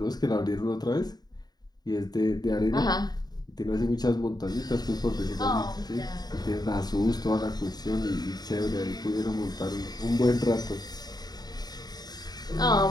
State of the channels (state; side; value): late; right; 0.19 ms